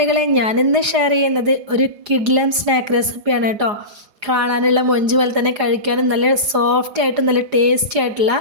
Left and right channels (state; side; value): late; left; 4.9 ms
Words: ഞാനിന്ന് ഷെയർ ചെയ്യുന്നത് ഒരു കിഡ്ലൻ സ്നാക്ക് റെസിപ്പിയാണ് കേട്ടോ. കാണാനുള്ള മൊഞ്ച് പോലെ തന്നെ കഴിക്കാനും നല്ല സോഫ്റ്റ് ആയിട്ടും നല്ല ടേസ്റ്റി ആയിട്ടുള്ള